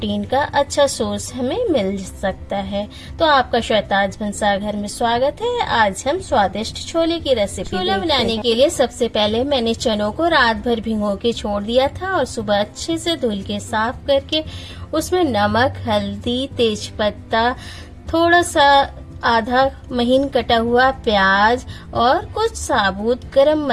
का अच्छा सोर्स हमें मिल सकता है। तो आपका शहताज भंसार घर में स्वागत है। आज हम स्वादिष्ट छोले की रेसिपी छोला बनाने के लिए सबसे पहले मैंने चनों को रात भर भिगो के छोड़ दिया था और सुबह अच्छे से धुल के साफ करके उसमें नमक, हल्दी, तेज पत्ता, थोड़ा सा आधा महीन कटा हुआ प्याज और कुछ साबुत गरम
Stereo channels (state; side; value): identical; both; correlation 1.00